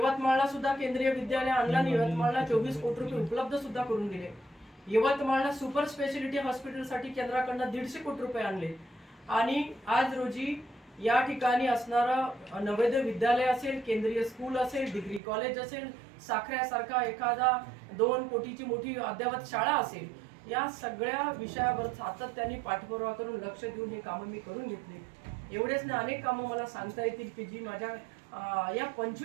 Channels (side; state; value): left; drops out; at 15.2 s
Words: सुद्धा केंद्रीय विद्यालय आणलं आणि यवतमाळला 24 कोटी रुपये उपलब्ध सुद्धा करून दिले. यवतमाळला सुपर स्पेशालिटी हॉस्पिटलसाठी केंद्राकडनं 150 कोटी रुपये आणले. आणि आज रोजी या ठिकाणी असणारं नवोदय विद्यालय असेल, केंद्रीय स्कूल असेल, डिग्री कॉलेज असेल, साखऱ्यासारखा एखादा 2 कोटीची मोठी अद्ययावत शाळा असेल, या सगळ्या विषयावर सातत्याने पाठपुरावा करून लक्ष देऊन ही कामं मी करून घेतली. एवढेच नाही, अनेक कामं मला सांगता येतील की जी माझ्या या